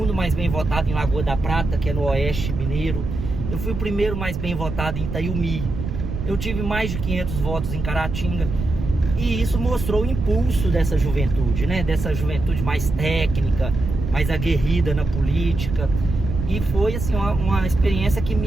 mais bem votado em Lagoa da Prata, que é no Oeste Mineiro. Eu fui o primeiro mais bem votado em Itaiumi. Eu tive mais de 500 votos em Caratinga. E isso mostrou o impulso dessa juventude, né? Dessa juventude mais técnica, mais aguerrida na política. E foi assim uma experiência que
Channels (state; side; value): noise; right; rumble, 5 dB below the sound